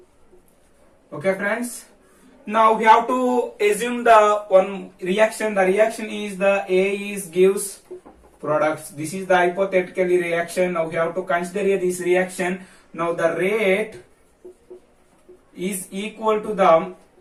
Okay friends. Now we have to assume the one reaction. The reaction is the A is gives products. This is the hypothetical reaction. Now we have to consider this reaction. Now the rate is equal to the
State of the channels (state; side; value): identical; both; correlation 1.00